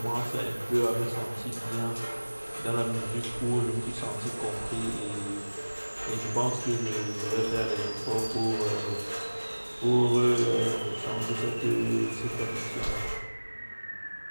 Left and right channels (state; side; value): inverted; both; correlation -1.00